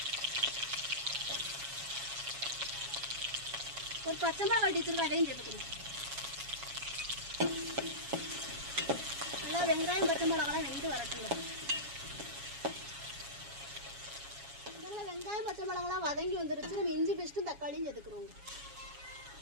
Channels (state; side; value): late; left; 7.2 ms